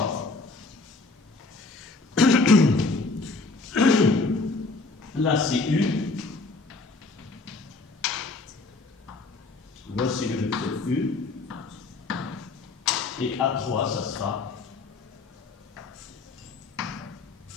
Là, c'est U. Voici le vecteur U. Et A3, ça sera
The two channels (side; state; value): right; quieter; 3.6 dB